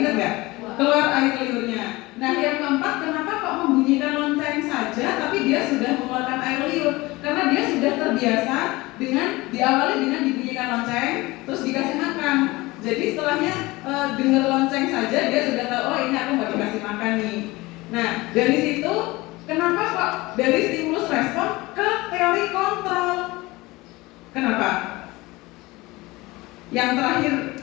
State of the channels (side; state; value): right; quieter; 21.2 dB